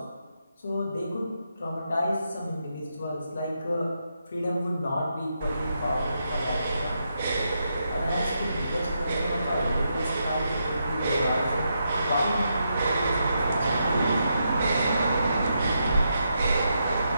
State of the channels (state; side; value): inverted; both; correlation -0.82